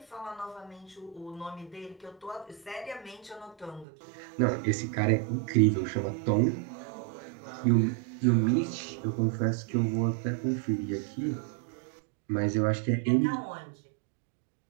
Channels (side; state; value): left; drops out; at 3.9 s